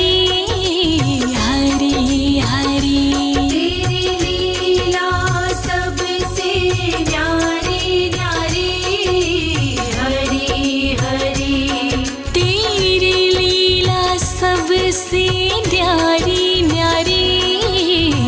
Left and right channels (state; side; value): identical; both; correlation 1.00